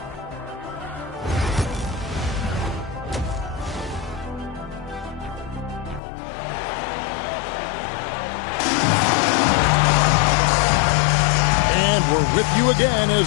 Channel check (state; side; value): drops out; right; at 6.0 s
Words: And we're with you again